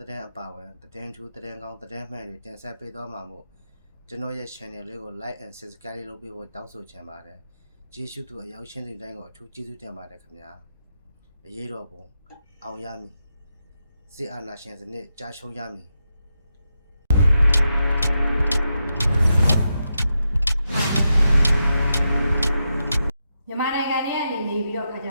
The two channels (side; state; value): both; inverted; correlation -0.86